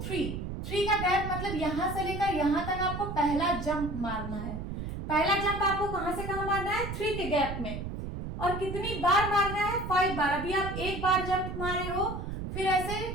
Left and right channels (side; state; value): right; noise; rumble, 6 dB below the sound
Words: 3 का गैप मतलब यहां से लेकर यहां तक आपको पहला जंप मारना है। पहला जंप आपको कहां से कहां मारना है? 3 के गैप में। और कितनी बार मारना है? 5 बार। अभी आप एक बार जंप मारे हो, फिर ऐसे